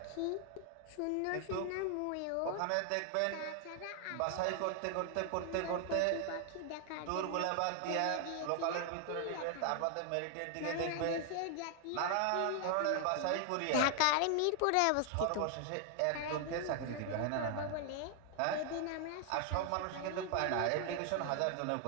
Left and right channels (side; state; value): both; different; correlation 0.00